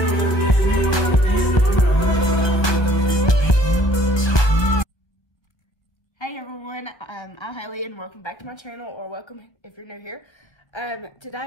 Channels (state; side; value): late; right; 1.2 ms